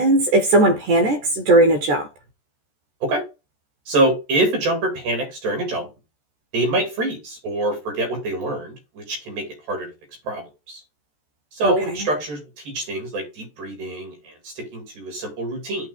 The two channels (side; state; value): left; late; 14 ms